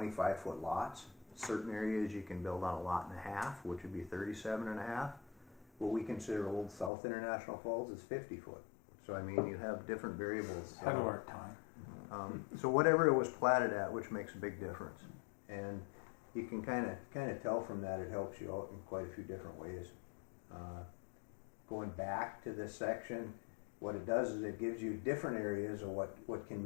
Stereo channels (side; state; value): right; drops out; at 6.9 s